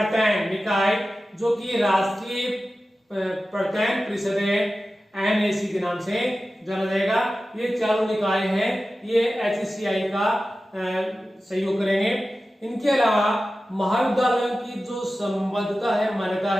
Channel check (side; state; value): both; normal; correlation 0.94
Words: निकाय जो कि राष्ट्रीय प्रत्ययन परिषद है NAC के नाम से जाना जाएगा। ये चारों निकाय हैं, ये HCI का सहयोग करेंगे। इनके अलावा महाविद्यालयों की जो संबद्धता है, मान्यता